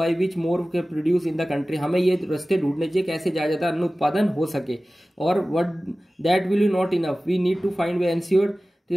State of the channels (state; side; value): normal; both; correlation 0.97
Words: which more के प्रोड्यूस इन द कंट्री, हमें ये रास्ते ढूंढने चाहिए कैसे ज्यादा अन्न उत्पादन हो सके। और what that will you not enough, we need to find way ensure